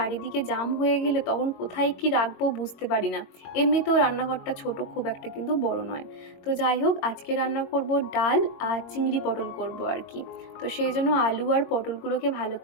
জাম হয়ে গেলে তখন কোথায় কি রাখবো বুঝতে পারি না। এমনিতেও রান্নাঘরটা ছোট, খুব একটা কিন্তু বড় নয়। তো যাই হোক, আজকে রান্না করব ডাল আর চিংড়ি পটল করব আর কি। তো সেই জন্য আলু আর পটলগুলোকে ভালো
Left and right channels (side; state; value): right; late; 22 ms